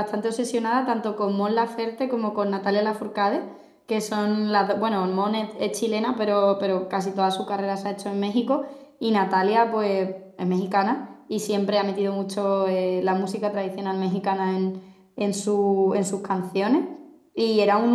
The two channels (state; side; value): identical; both; correlation 1.00